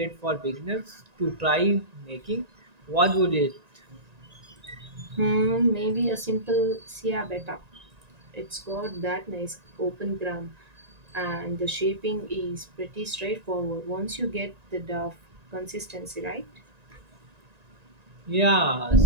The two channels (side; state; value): left; late; 1.9 ms